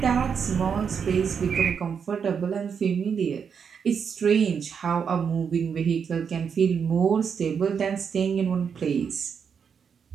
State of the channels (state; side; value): quieter; left; 6.7 dB